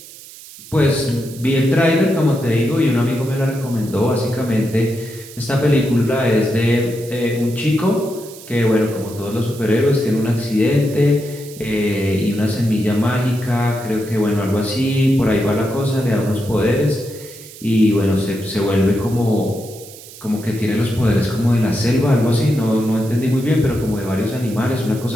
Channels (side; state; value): right; noise; hiss, 18 dB below the sound